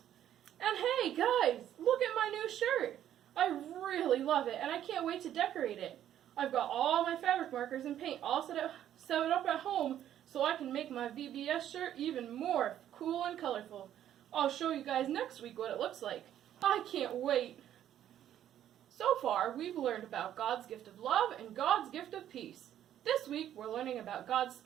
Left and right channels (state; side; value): quieter; left; 11.1 dB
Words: And hey, guys, look at my new shirt. I really love it, and I can't wait to decorate it. I've got all my fabric markers and paint all set up at home so I can make my VBS shirt even more cool and colorful. I'll show you guys next week what it looks like. I can't wait. So far, we've learned about God's gift of love and God's gift of peace. This week, we're learning about God's